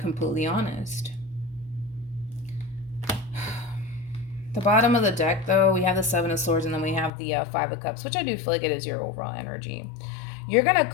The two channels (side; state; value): right; drops out; at 7.1 s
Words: honest. The bottom of the deck, though, we have the Seven of Swords, and then we have the Five of Cups, which I do feel like it is your overall energy. You're going to